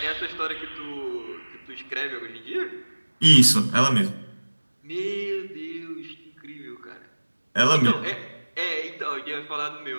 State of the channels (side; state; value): both; inverted; correlation -1.00